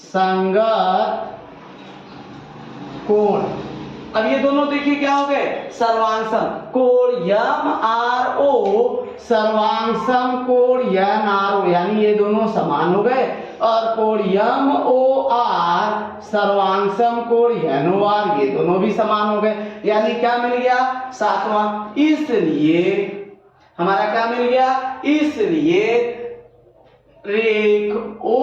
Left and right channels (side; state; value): both; identical; correlation 1.00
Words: कोण। अब ये दोनों देखिए क्या हो गए? सर्वांग सम, कोण MRO सर्वांग सम कोण NRO, यानी ये दोनों समान हो गए। और कोण MOR सर्वांग सम कोण NOR, ये दोनों भी समान हो गए। यानी क्या मिल गया? सातवां। इसलिए हमारा क्या मिल गया? इसलिए रेख